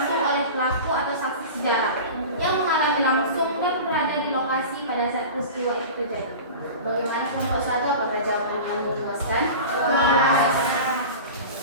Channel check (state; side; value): inverted; both; correlation -0.33